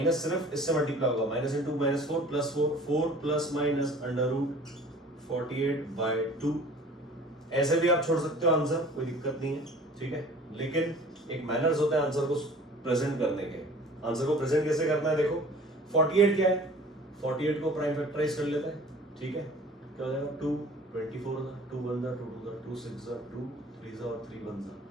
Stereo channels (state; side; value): normal; both; correlation 0.47